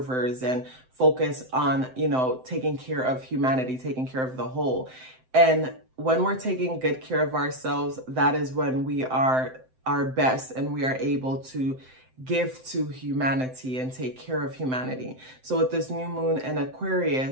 and focus on, you know, taking care of humanity, taking care of the whole. And when we're taking good care of ourselves, that is when we are our best and we are able to give to humanity and take care of humanity. So with this new moon in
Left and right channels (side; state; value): left; late; 7.8 ms